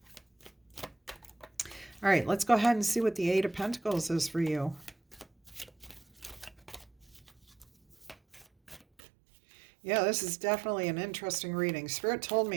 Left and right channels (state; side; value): drops out; left; at 9.0 s